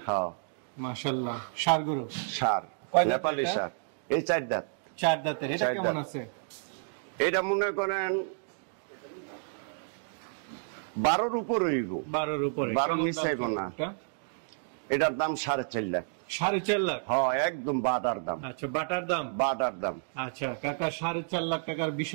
হ্যাঁ। মাশাআল্লাহ, ষাঁড় গরু। ষাঁড়, নেপালি ষাঁড়। এই 4 দাঁত। 4 দাঁতের। এটা কেমন আছে? এটা মনে করেন 12-র উপরে হইব। 12-র উপরে। 12 নিচে হইব না। এটার দাম 4.5 লাখ। 4.5 লাখ? হ্যাঁ, একদম বাটার দাম। আচ্ছা, বাটার দাম? বাটার দাম। আচ্ছা কাকা, 4.5 লাখ টাকার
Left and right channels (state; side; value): silent; left; digital silence